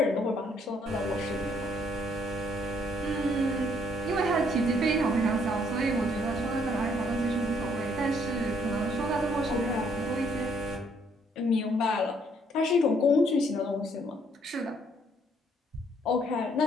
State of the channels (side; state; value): both; normal; correlation 0.67